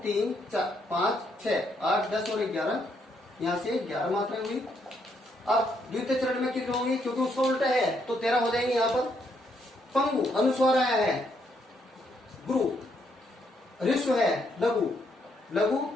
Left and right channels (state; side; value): normal; both; correlation 0.74